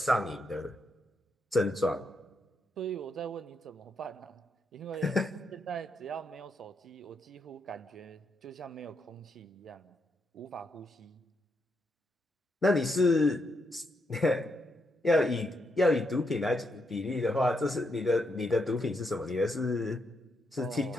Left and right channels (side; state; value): both; normal; correlation 0.80